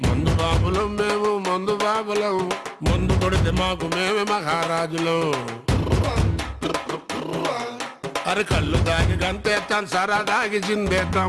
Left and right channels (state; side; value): identical; both; correlation 1.00